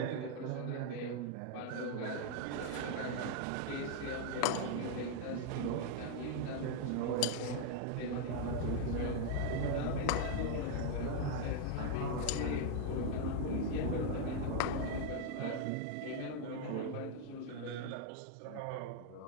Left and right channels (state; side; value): different; both; correlation 0.00